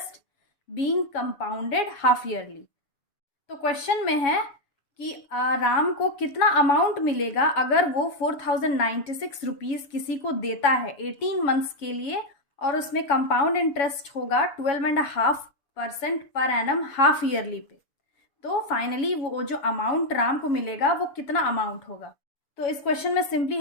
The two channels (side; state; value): right; late; 7.2 ms